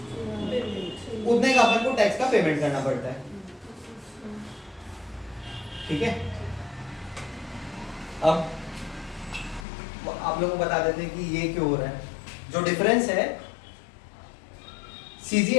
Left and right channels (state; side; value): drops out; right; at 9.7 s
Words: उतने का अपन को टैक्स का पेमेंट करना पड़ता है। ठीक है, अब आप लोगों को बता देते हैं कि ये क्यों हो रहा है। जो डिफरेंस है